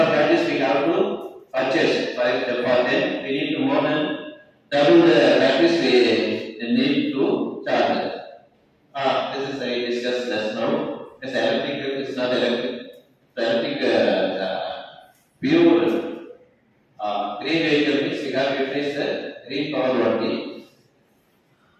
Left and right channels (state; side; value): identical; both; correlation 1.00